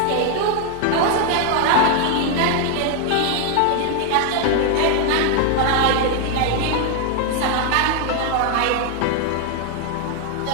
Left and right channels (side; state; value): both; different; correlation 0.00